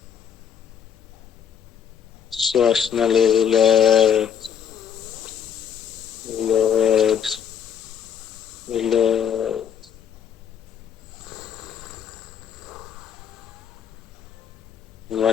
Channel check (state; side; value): quieter; right; 8.0 dB